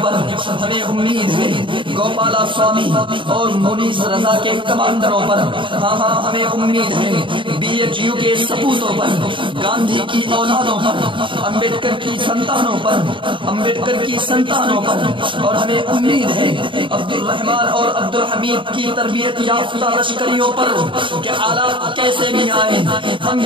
پر، ہمیں امید ہے گوپالا سوامی اور مونیس رضا کے کمانڈروں پر، ہمیں امید ہے بی ایچ یو کے سپوتوں پر، گاندھی کی اولادوں پر، امبیڈکر کی سنتانوں پر، اور ہمیں امید ہے عبد الرحمان اور عبد الحمید کی تربیت یافتہ لشکریوں پر کہ حالات کیسے بھی آئیں ہم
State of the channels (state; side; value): late; left; 0.24 ms